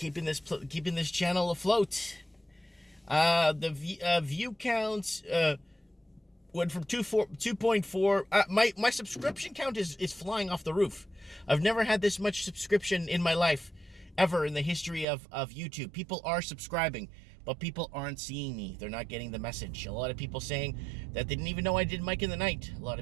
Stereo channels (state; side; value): drops out; left; at 15.1 s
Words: this channel afloat. The view count went from 2.4. My subscription count is flying off the roof. I've never had this much subscription in my life, ever in the history of YouTube. People are subscribing, but people aren't seeing me. They're not getting the message. A lot of people saying that they didn't even know I did Mike in the Night. A lot